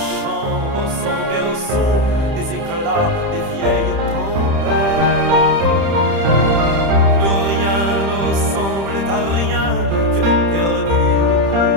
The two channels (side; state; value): left; late; 30 ms